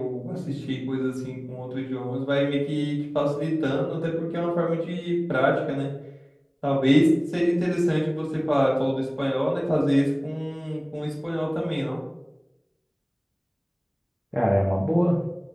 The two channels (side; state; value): both; identical; correlation 1.00